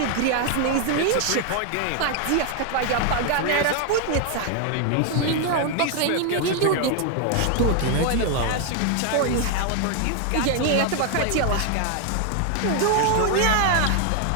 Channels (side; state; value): both; different; correlation 0.00